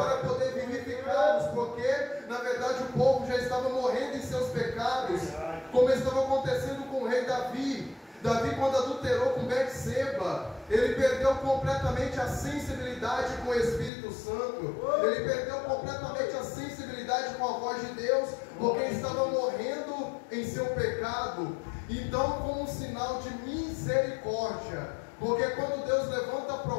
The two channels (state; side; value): drops out; right; at 13.9 s